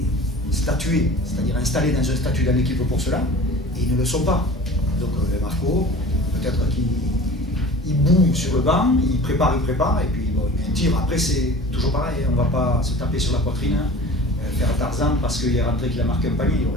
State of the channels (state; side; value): normal; both; correlation 0.41